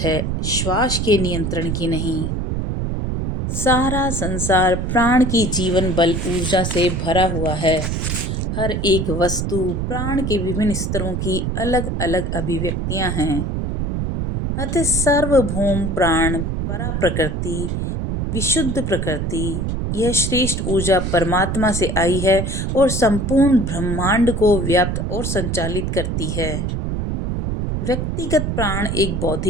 श्वास के नियंत्रण की नहीं। सारा संसार प्राण की जीवन बल ऊर्जा से भरा हुआ है। हर एक वस्तु प्राण के विभिन्न स्तरों की अलग अलग अभिव्यक्तियां हैं। अतः सार्वभौम प्राण, परा प्रकृति, विशुद्ध प्रकृति, यह श्रेष्ठ ऊर्जा परमात्मा से आई है और संपूर्ण ब्रह्मांड को व्याप्त और संचालित करती है। व्यक्तिगत प्राण एक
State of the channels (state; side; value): noise; right; rumble, 1 dB below the sound